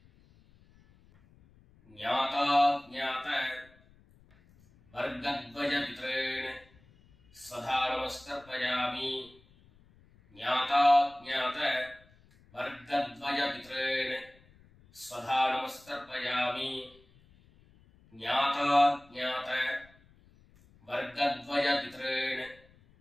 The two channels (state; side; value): noise; left; rumble, 28 dB below the sound